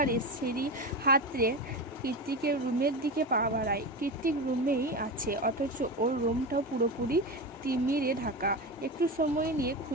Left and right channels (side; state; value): both; normal; correlation 0.22